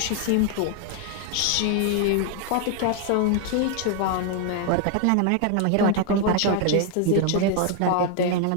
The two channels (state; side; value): different; both; correlation 0.00